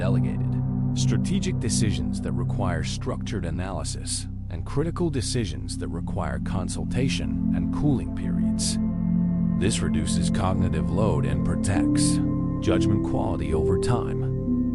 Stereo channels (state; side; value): identical; both; correlation 1.00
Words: Strategic decisions that require structured analysis. And critical decisions that require consultation and cooling periods. This reduces cognitive load and protects judgment quality over